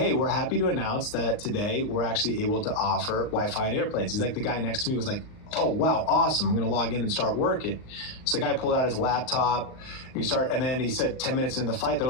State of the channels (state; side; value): late; right; 38 ms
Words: we're happy to announce that today we're actually able to offer Wi-Fi on airplanes. He's like, the guy next to me was like, oh, wow, awesome. I'm going to log in and start working. So the guy pulled out his laptop. And then he said 10 minutes into the flight, they're